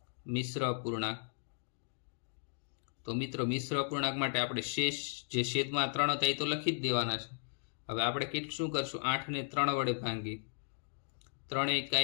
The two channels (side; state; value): right; silent; digital silence